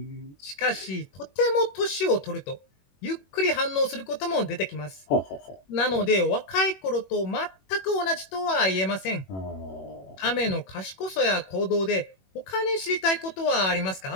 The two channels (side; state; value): right; late; 21 ms